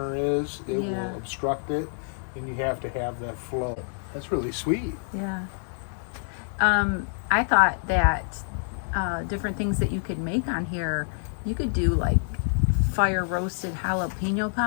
is. It Yeah. will obstruct it, and you have to have that flow. That's really sweet. Yeah. I thought that different things that you could make on here, you could do like fire roasted jalapeno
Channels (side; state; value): right; silent; digital silence